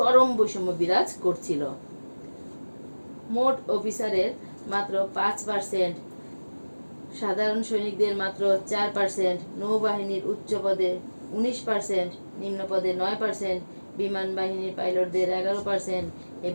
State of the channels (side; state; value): both; inverted; correlation -1.00